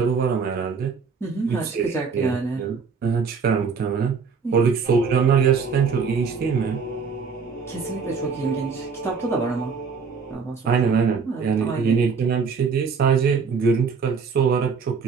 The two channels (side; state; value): left; quieter; 5.5 dB